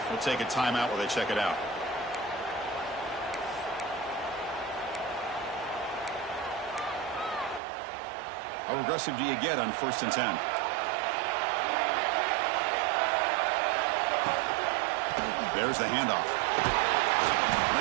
We'll take a timeout while they check it out. How aggressive do you get on 1st and 10? There's the handoff.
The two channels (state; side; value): drops out; left; at 7.6 s